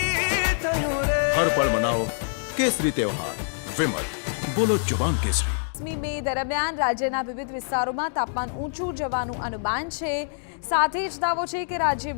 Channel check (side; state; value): right; silent; digital silence